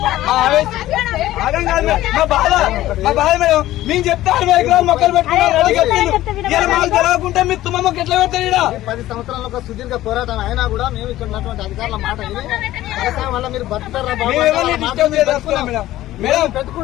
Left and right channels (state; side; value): quieter; right; 15.0 dB